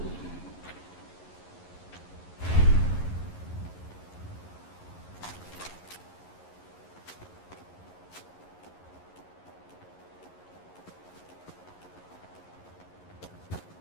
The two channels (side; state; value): right; late; 11 ms